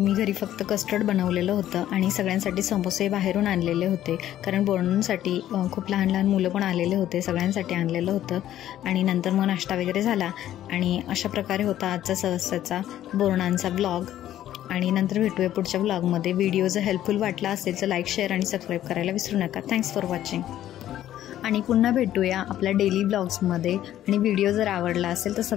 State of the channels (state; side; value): quieter; right; 12.3 dB